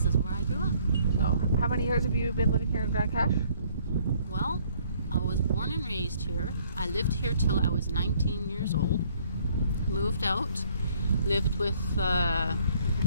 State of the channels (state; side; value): inverted; both; correlation -0.62